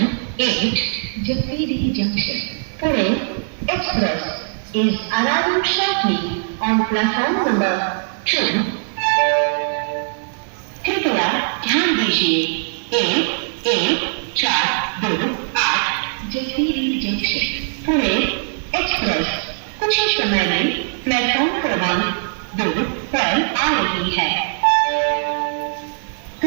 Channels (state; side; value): silent; left; digital silence